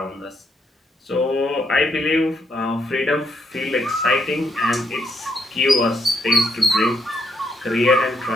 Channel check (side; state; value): both; normal; correlation 0.76